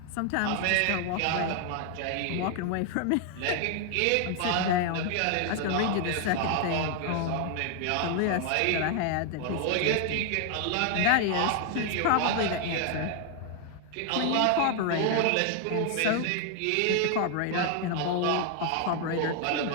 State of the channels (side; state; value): both; different; correlation 0.00